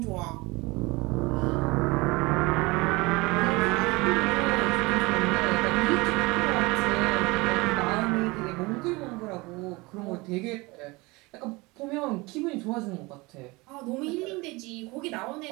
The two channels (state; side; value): quieter; left; 23.8 dB